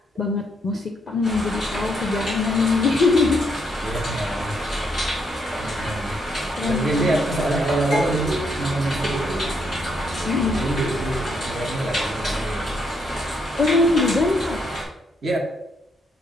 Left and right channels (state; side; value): normal; both; correlation 0.75